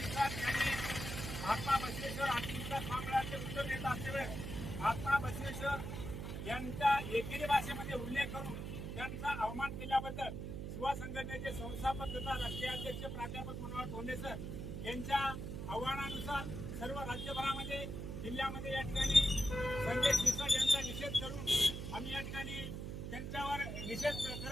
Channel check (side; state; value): right; noise; hum, 5 dB below the sound